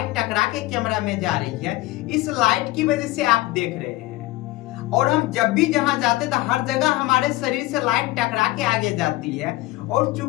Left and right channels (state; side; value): quieter; right; 18.5 dB